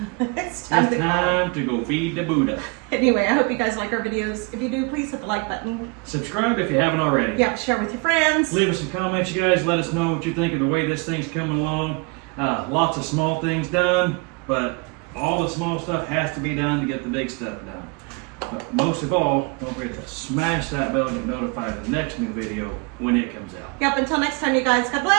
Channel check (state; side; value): quieter; left; 30.5 dB